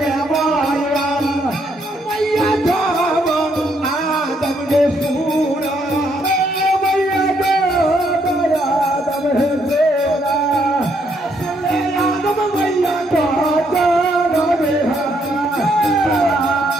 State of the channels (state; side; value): normal; both; correlation 0.73